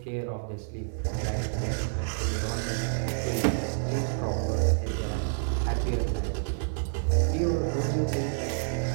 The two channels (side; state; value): left; silent; 59 dB below the other